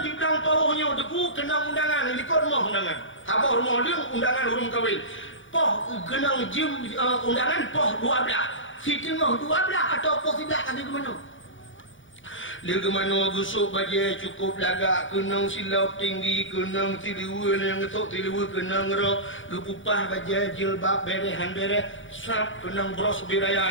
belakang pawahnya deku kena undangan ikut rumah undangan tabah rumah dia undangan urung kahwin poh kena jim undangan poh 12 si tengah 12 atau poh 11 kali ke mana dia ke mana gusuk baju cukup lagak kenang silap tinggi kenang tiliwa yang ngetok tiliwa kenang ngerok kepupah baju jilbab berehan bereh sap kenang bros biraya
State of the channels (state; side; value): late; right; 0.56 ms